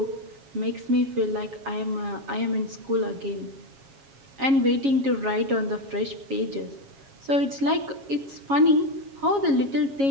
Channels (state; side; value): late; left; 7.3 ms